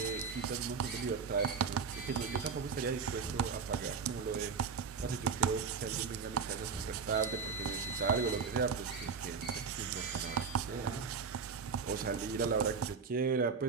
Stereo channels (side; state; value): left; quieter; 5.6 dB